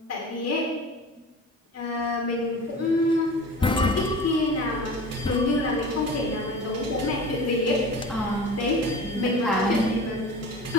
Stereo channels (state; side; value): normal; both; correlation 0.37